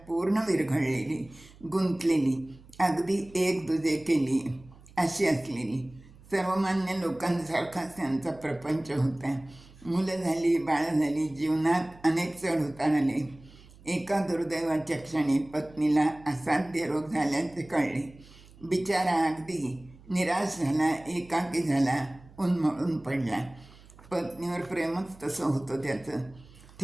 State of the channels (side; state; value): right; noise; hum, 23 dB below the sound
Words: पूर्ण विरघळलेली, गुंतलेली, अगदी एक दुजे केली अशी असलेली. सर्वमान्य लोकांसारखाच त्यांचा प्रपंच होता. मुलं झाली, बाळं झाली, जीवनात अनेक चढ उतार आले. एका दुर्दैवाच्या क्षणी पत्नीला असाध्य रोग झाल्याचे कळले. बिचारा अगदी निराश झाला, एकाकी झाला, उन्मळून पडला. पत्नीवर प्रेमच तसं होतं त्याचं.